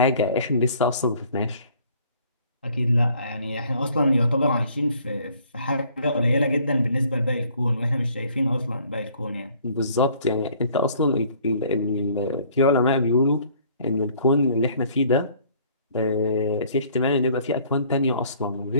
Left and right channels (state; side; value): inverted; both; correlation -0.58